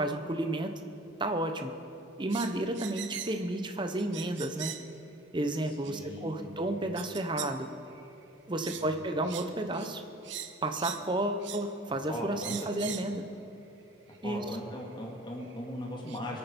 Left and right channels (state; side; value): normal; both; correlation 0.47